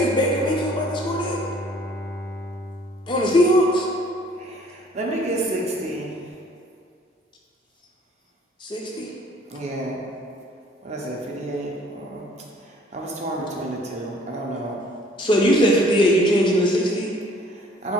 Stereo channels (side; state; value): both; normal; correlation 0.56